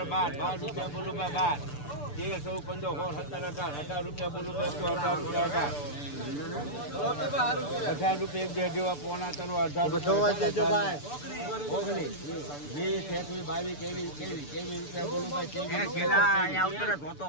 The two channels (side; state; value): right; late; 6.9 ms